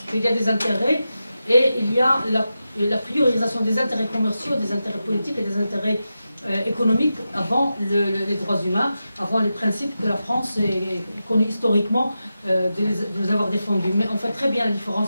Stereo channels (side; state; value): both; inverted; correlation -0.91